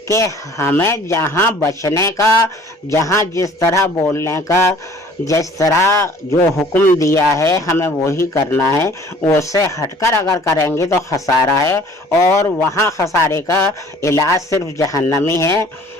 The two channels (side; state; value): both; normal; correlation 0.51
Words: کہ ہمیں جہاں بچنے کا، جہاں جس طرح بولنے کا، جس طرح جو حکم دیا ہے ہمیں وہی کرنا ہے، اس سے ہٹ کر اگر کریں گے تو خسارہ ہے، اور وہاں خسارے کا علاج صرف جہنمی ہے۔